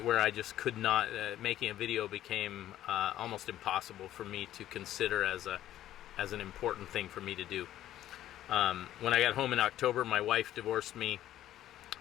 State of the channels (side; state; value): right; quieter; 12.8 dB